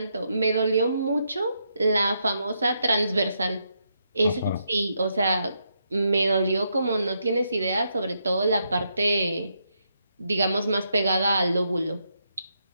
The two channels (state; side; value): inverted; both; correlation -0.79